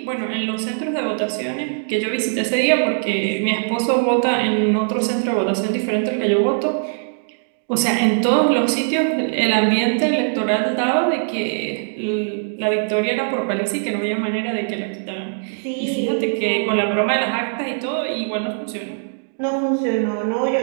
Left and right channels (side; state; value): left; silent; digital silence